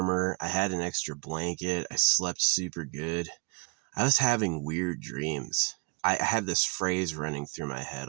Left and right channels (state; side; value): quieter; left; 34.3 dB